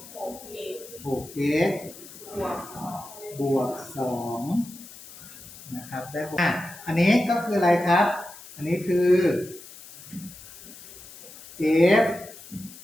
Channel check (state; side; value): noise; left; hiss, 17 dB below the sound